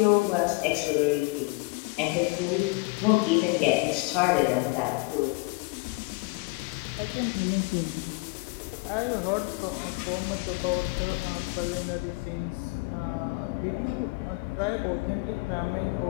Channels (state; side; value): quieter; right; 26.3 dB